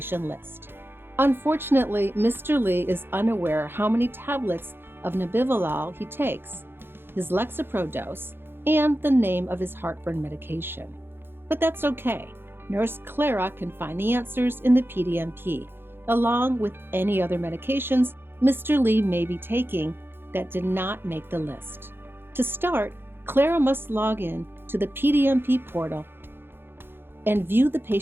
list. Unfortunately, Mr. Lee is unaware how many tablets of nebivolol he takes, his Lexapro dose, and the name of his heartburn medication. But that's okay. Nurse Clara can find the answers in the PDMP, along with any other medications Mr. Lee may be taking that did not make the list. To start, Clara must log in to the PDMP portal and view the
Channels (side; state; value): left; late; 0.10 ms